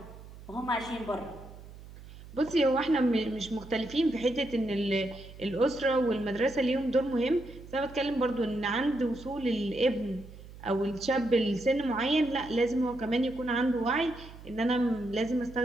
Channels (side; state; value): right; noise; hum, 17 dB below the sound